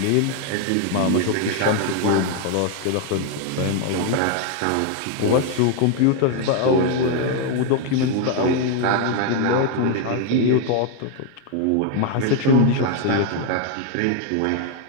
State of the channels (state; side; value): different; both; correlation 0.00